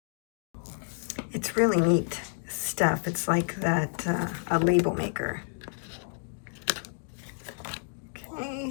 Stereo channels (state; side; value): silent; right; digital silence